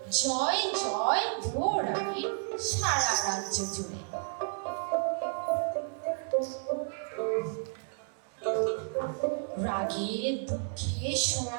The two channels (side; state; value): left; silent; 57 dB below the other